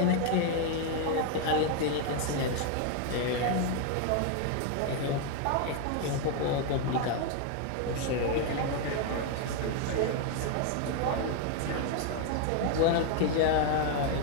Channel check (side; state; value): both; different; correlation 0.01